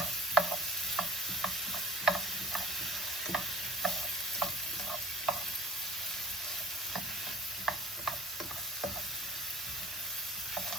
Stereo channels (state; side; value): normal; both; correlation 0.49